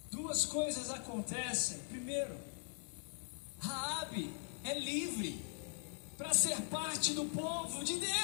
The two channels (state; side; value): silent; right; 50 dB below the other